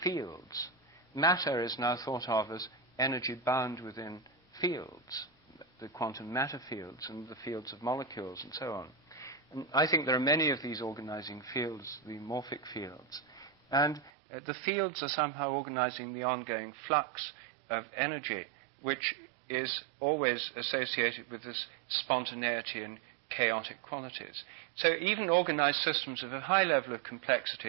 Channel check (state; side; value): drops out; left; at 14.1 s